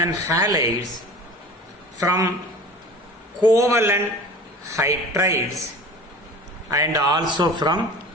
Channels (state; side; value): normal; both; correlation 0.39